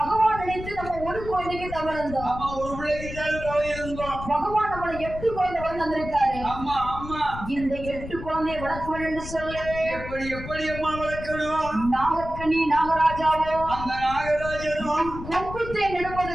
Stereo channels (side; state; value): left; noise; rumble, 10 dB below the sound